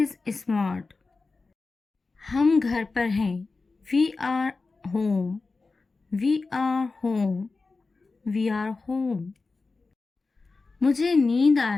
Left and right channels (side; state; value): right; quieter; 3.9 dB